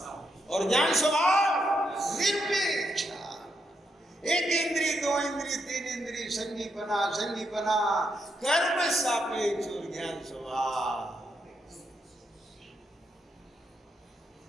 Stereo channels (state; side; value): normal; both; correlation 0.80